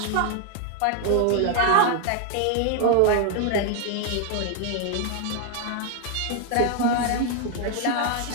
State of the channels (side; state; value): both; different; correlation 0.00